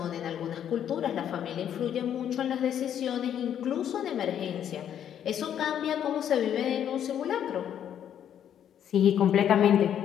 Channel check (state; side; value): quieter; right; 9.7 dB